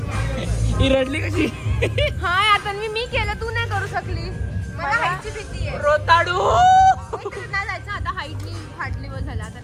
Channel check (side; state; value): both; identical; correlation 1.00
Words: ही रडली कशी. हा आता मी केलं, तू नाही करू शकली. मला हाईटची भीती आहे. रोताडू. नाही जायचं आता, हाईटनी फाटली वर झाला आता.